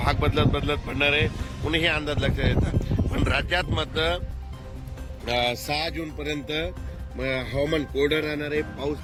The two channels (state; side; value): identical; both; correlation 1.00